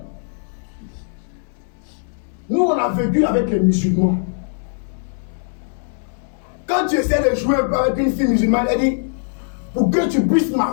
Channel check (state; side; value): silent; right; 65 dB below the other